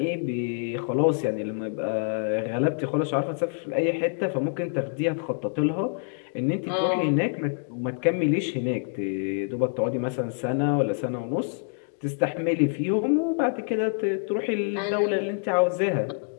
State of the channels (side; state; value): right; silent; 61 dB below the other